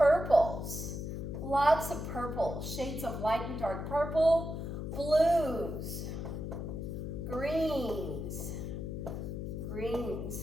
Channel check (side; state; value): left; noise; hum, 5 dB below the sound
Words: lots of purple, shades of light and dark purple, blues, greens,